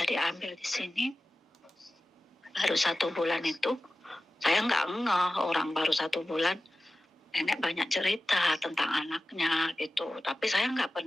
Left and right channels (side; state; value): both; normal; correlation 0.95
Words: diambil di sini baru 1 bulan itu, Saya nggak ngeh, orang baru 1 bulan nenek banyak cerita tentang anaknya gitu. Tapi saya nggak